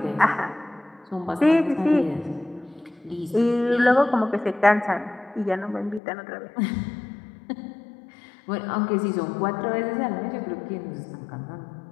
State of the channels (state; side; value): drops out; right; at 6.0 s